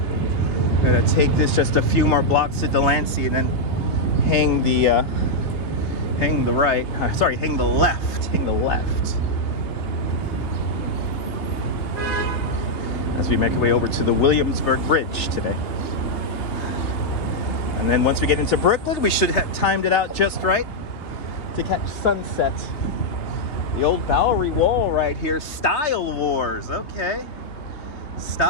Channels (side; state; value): right; late; 3.4 ms